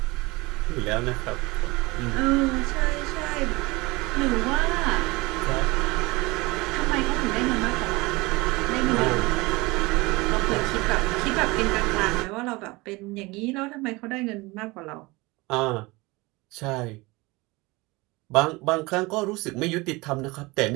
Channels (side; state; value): left; quieter; 23.2 dB